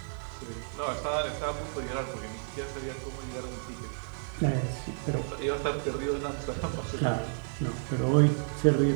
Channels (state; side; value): silent; left; 57 dB below the other